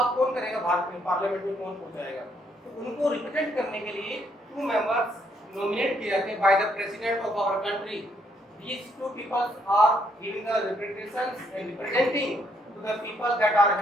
कौन करेगा भारत में, पार्लियामेंट में कौन पहुंचाएगा? तो उनको रिप्रेजेंट करने के लिए 2 मेंबर्स नॉमिनेट किए जाते हैं by the president of our country. These 2 people are giving the representations and representing to the people that are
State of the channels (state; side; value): normal; both; correlation 0.71